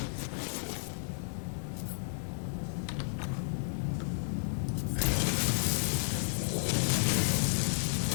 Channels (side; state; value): right; silent; digital silence